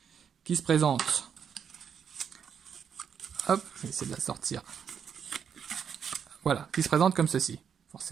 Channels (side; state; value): left; quieter; 7.6 dB